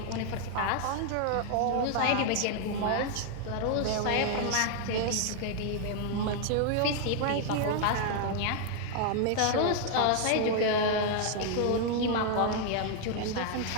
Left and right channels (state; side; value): different; both; correlation 0.00